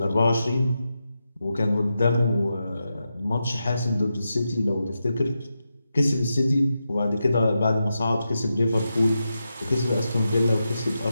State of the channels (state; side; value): inverted; both; correlation -0.88